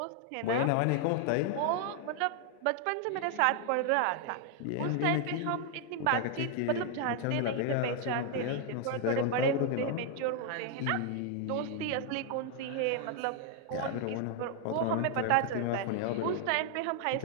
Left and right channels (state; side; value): different; both; correlation 0.00